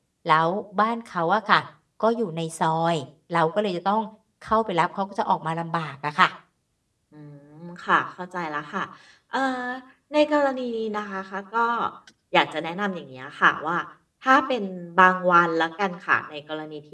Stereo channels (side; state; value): both; identical; correlation 1.00